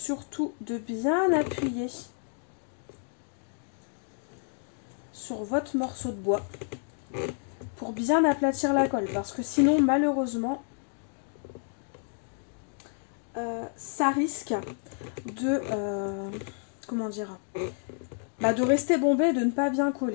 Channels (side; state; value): right; silent; 56 dB below the other